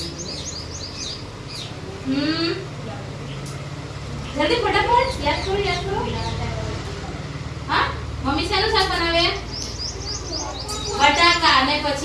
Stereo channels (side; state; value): both; identical; correlation 1.00